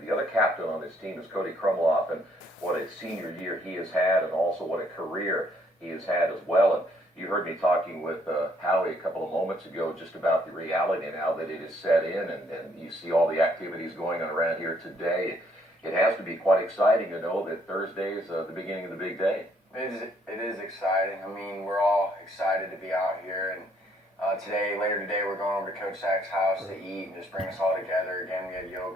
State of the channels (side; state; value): both; normal; correlation 0.67